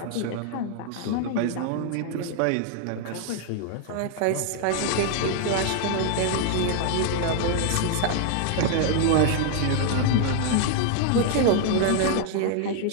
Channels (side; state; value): both; different; correlation 0.00